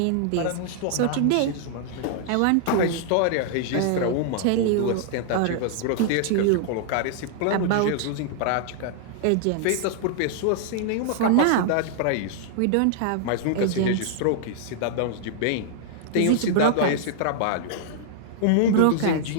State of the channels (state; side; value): different; both; correlation -0.01